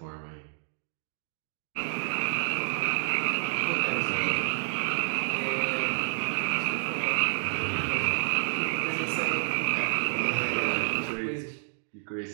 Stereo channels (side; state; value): left; silent; digital silence